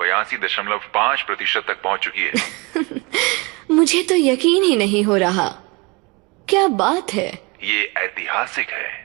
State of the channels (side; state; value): left; quieter; 26.5 dB